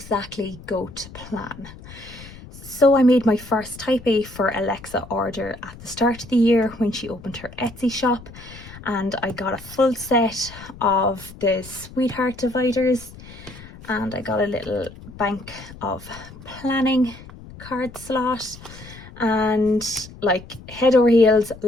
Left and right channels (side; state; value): left; noise; rumble, 17 dB below the sound